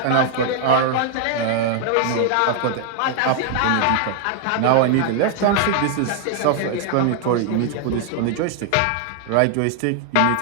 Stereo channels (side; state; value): both; different; correlation 0.00